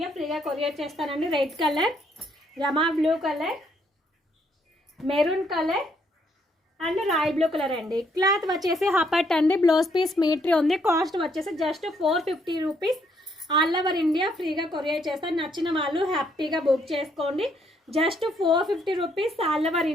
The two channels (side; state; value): both; normal; correlation 0.71